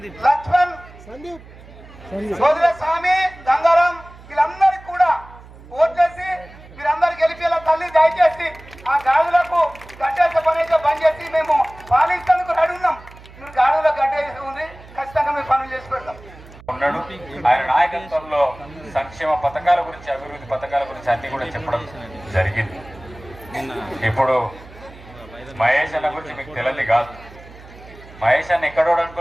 లక్ష్మణ్, సోదర స్వామి, గంగారాం, వీళ్ళందరికీ కూడా ఓట్లేసి మీరందరూ గెలిపేలా తల్లి దయచేసి ఆ గాడులకు గడ్డేసే పని అయితే బంద్ చేసి మేము పాలించేందుకు రెడీ ఉన్నాం. మీరు గాడులో గడ్డేసి ఉంది, ఖచ్చితంగా మేము పనులు చేసి పెడతాం. ఉన్నాడు. ఆయన నాయకత్వంలో సంక్షేమ పథకాల గురించి, అభివృద్ధి పథకాల గురించి అన్ని కూడా చెప్పడం జరిగింది. ఇప్పుడు మహేష్ అన్న గురించి మీకు తెలియదు కాదు. మహేష్ అన్న ఎక్కడోడు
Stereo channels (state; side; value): noise; right; hum, 20 dB below the sound